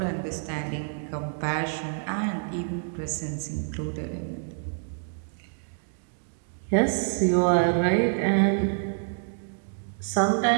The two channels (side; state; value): left; silent; digital silence